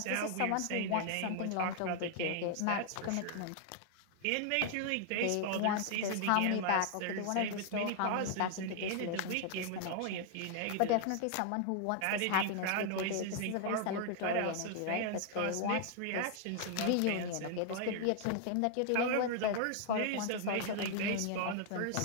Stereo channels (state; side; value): different; both; correlation 0.00